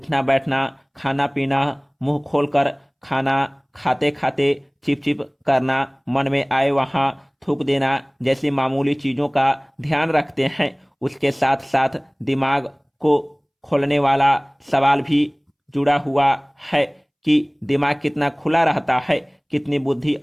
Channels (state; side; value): identical; both; correlation 1.00